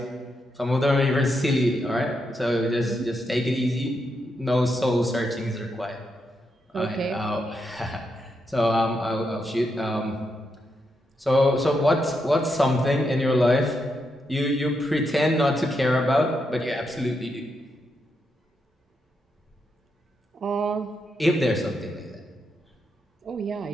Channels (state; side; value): normal; both; correlation 0.82